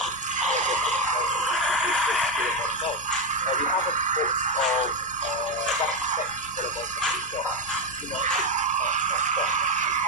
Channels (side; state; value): both; normal; correlation 0.08